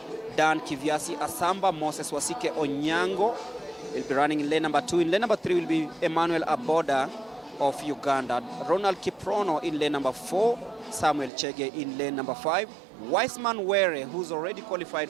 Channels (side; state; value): left; drops out; at 11.3 s